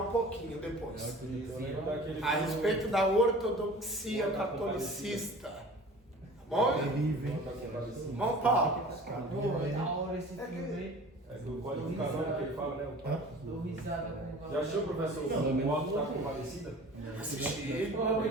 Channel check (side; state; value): both; normal; correlation 0.43